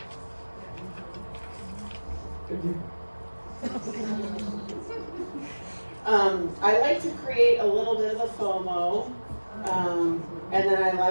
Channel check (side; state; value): both; inverted; correlation -1.00